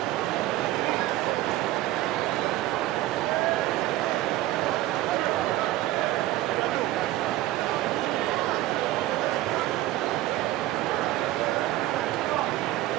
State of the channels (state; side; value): quieter; left; 15.8 dB